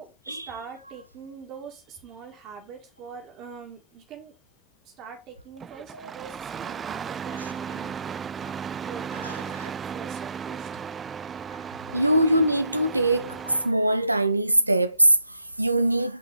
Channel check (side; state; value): both; inverted; correlation -0.73